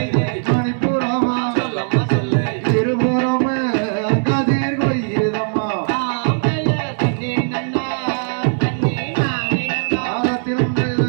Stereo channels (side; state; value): left; silent; 67 dB below the other